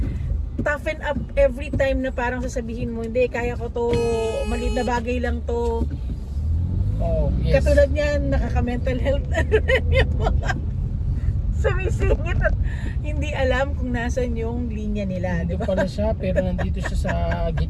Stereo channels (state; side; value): identical; both; correlation 1.00